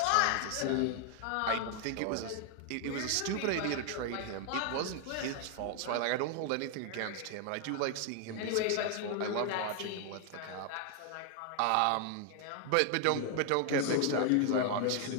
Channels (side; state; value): both; different; correlation 0.00